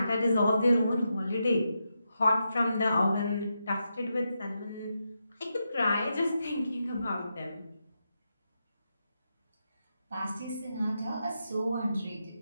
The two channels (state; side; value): inverted; both; correlation -0.86